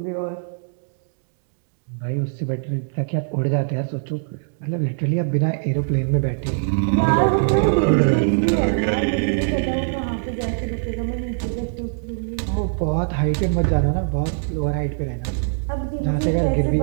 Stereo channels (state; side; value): silent; left; digital silence